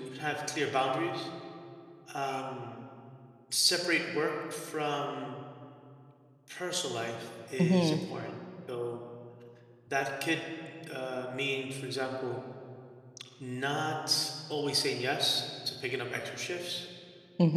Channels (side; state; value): both; identical; correlation 1.00